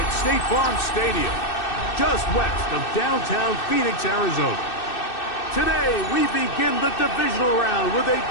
State Farm Stadium, just west of downtown Phoenix, Arizona. Today, we begin the divisional round with a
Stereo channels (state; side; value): late; right; 2.6 ms